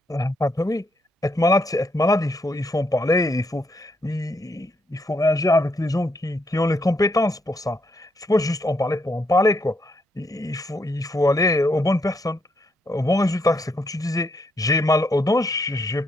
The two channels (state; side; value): normal; both; correlation 0.76